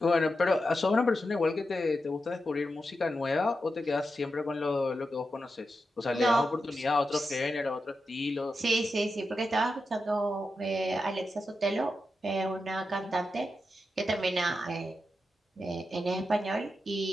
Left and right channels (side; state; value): both; normal; correlation 0.88